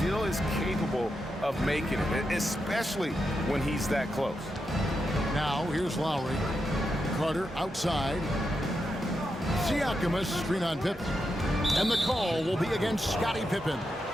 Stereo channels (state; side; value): normal; both; correlation 0.86